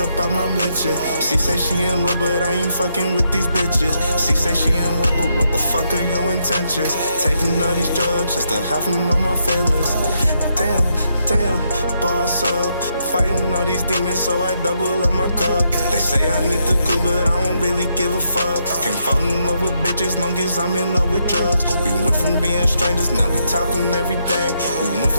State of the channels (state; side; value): inverted; both; correlation -0.78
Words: out my mention. She say she in love, but I ain't fucking with these bitches. She say she in love, but what the fuck are your intentions? Taking all these drugs just to hide from all my feelings. Damn, boss up. Fighting all these demons, so I double up my cup. They say I need the cool, but I don't really give a fuck. Can't fall in love with bitches long as I'm in love with drugs. We went from being strangers, now we talking every day. We went